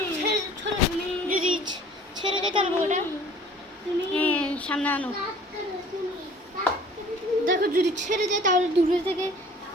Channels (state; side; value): normal; both; correlation 0.51